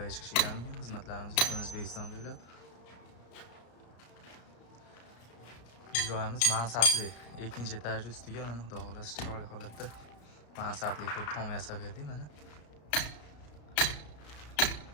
chiqishingiz mumkin. Xizmatlarimiz butun O'zbekiston bo'ylab. Joyimiz mansabli. Ikkinchi etaj ustiga mana xudo xolasa chiroyli holatda mansabli qilib tom yasab berdik mana.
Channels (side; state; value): right; late; 34 ms